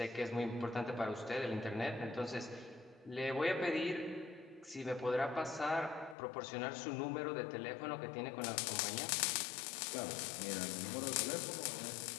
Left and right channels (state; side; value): drops out; right; at 6.2 s